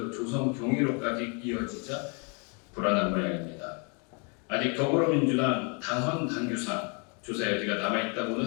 조성 경위로까지 이어지자 불안한 모양입니다. 아직 더불어민주당 당헌 당규상 조사 여지가 남아있다고는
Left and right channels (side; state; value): right; quieter; 35.3 dB